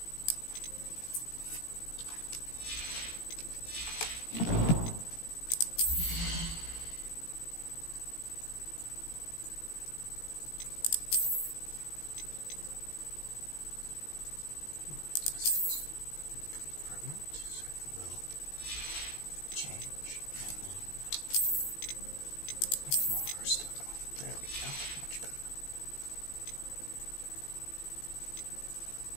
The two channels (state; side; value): late; right; 17 ms